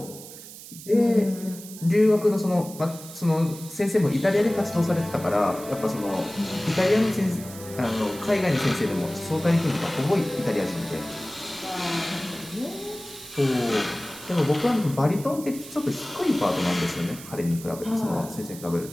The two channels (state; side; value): noise; right; hiss, 15 dB below the sound